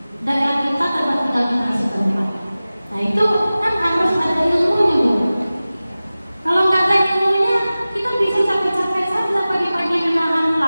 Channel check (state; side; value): inverted; both; correlation -0.97